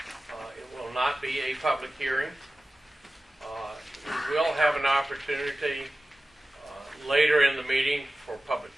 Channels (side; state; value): both; normal; correlation 0.96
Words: It will not be a public hearing. We will have an opportunity later in the meeting for public